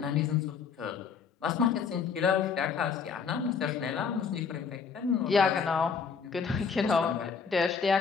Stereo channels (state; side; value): quieter; right; 6.0 dB